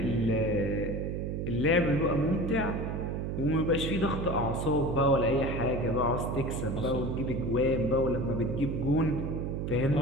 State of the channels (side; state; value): right; noise; hum, 2 dB below the sound